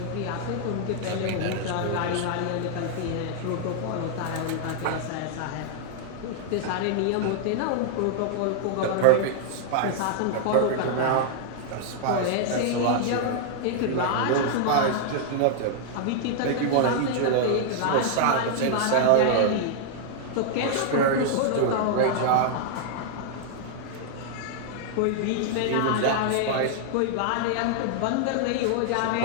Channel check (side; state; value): both; different; correlation -0.01